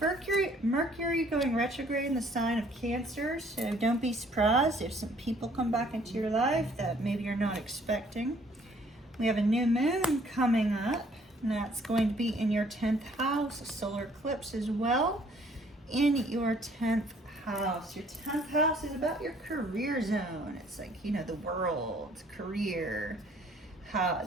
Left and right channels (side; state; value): both; normal; correlation 0.60